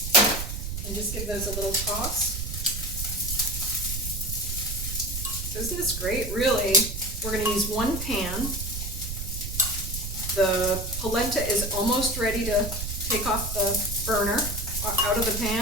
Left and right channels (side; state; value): right; noise; rumble, 5 dB below the sound